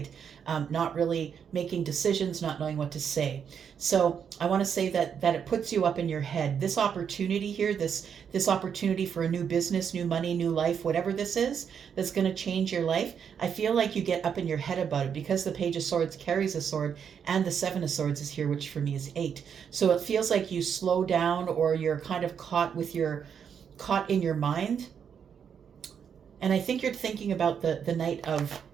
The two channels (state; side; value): quieter; left; 7.5 dB